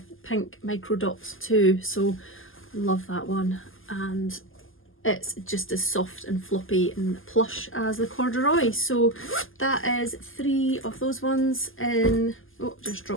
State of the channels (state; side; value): late; right; 0.59 ms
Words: pink micro dots too. So love that one. And it's just as soft and floppy and plush as the corduroy. So that is 3 of those ones in, oh, just